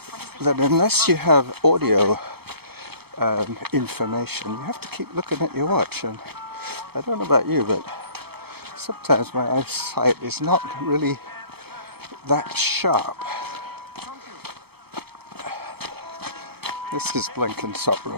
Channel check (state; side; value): late; left; 0.96 ms